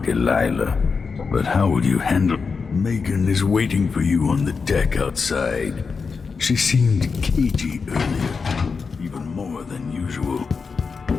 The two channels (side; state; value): right; quieter; 5.1 dB